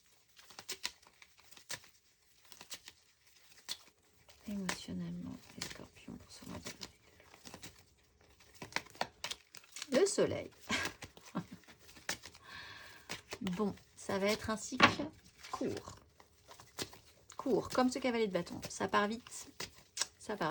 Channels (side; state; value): both; identical; correlation 1.00